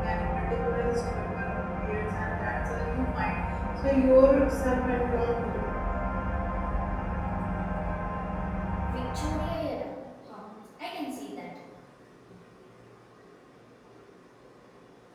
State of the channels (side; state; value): both; identical; correlation 1.00